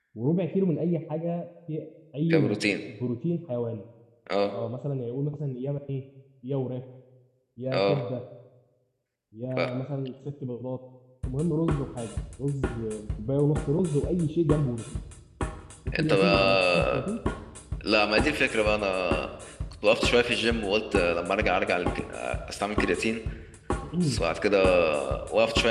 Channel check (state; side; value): identical; both; correlation 1.00